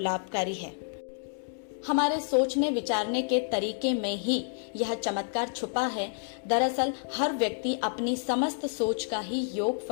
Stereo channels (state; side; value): silent; right; digital silence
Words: है। हमारे सोचने विचारने के तरीके में ही यह चमत्कार छुपा है। दरअसल हर व्यक्ति अपनी समस्त सोच का ही